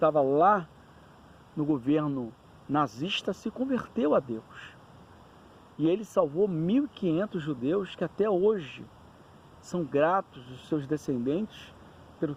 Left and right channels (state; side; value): identical; both; correlation 1.00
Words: lá no governo nazista, se converteu a Deus. E ele salvou 1.500 judeus que até hoje são gratos os seus descendentes pelo